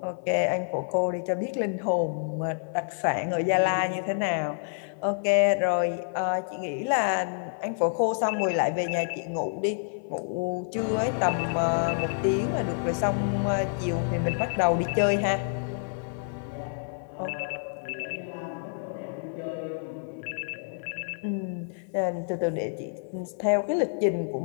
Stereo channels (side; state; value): right; silent; 55 dB below the other